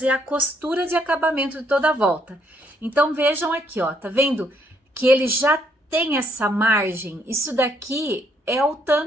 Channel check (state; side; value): normal; both; correlation 0.71